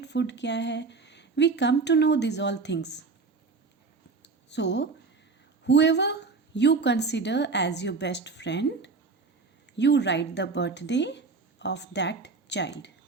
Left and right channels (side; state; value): left; quieter; 4.4 dB